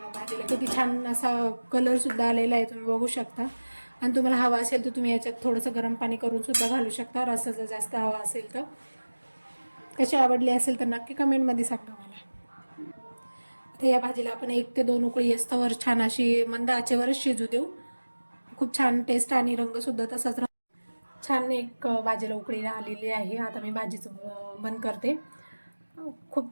भाजीला किती छान असा कलरसुद्धा आलेला आहे, तुम्ही बघू शकता। आणि तुम्हाला हवा असेल तर तुम्ही याच्यात थोडंसं गरम पाणी करून सुद्धा घालू शकता, रस्सा जर जास्त हवा असेल तर। कशी आवडली असेल तर नक्की कमेंटमध्ये सांगा मला. आता या भाजीला आपण 1 ते 2 उकळी असतावर छान अशी मंद आचेवरच शिजू देऊ. खूप छान टेस्ट आणि रंग सुद्धा तसाच राहतो. छान एक भाजीला उकळी आलेली आहे. आता मी भाजीचं बंद करते.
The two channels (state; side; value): inverted; both; correlation -1.00